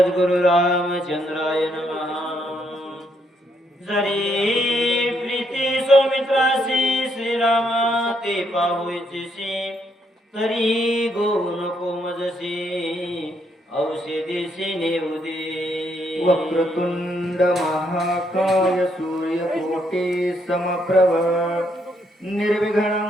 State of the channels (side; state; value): both; normal; correlation 0.74